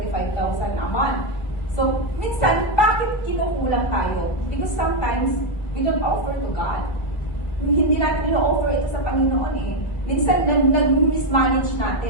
a month. So, minsan, bakit kinukulang tayo? Because sometimes, we don't offer to God. Hindi natin i-offer ito sa Panginoon eh. Minsan, nag-mismanage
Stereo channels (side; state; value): right; late; 1.7 ms